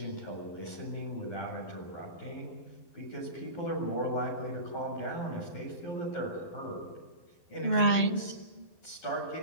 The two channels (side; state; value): right; late; 12 ms